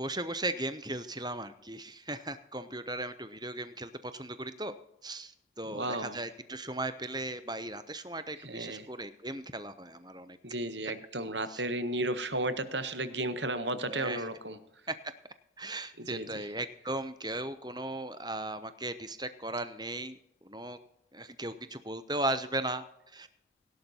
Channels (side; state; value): both; normal; correlation 0.11